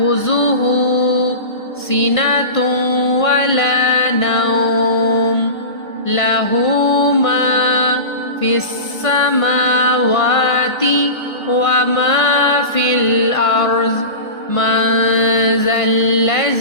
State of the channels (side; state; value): right; late; 1.5 ms